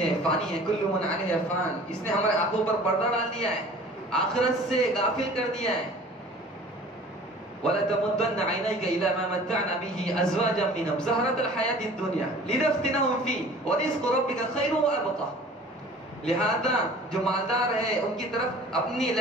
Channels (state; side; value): normal; both; correlation 0.46